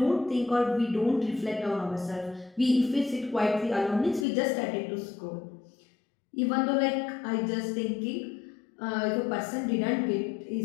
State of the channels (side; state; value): right; drops out; at 4.2 s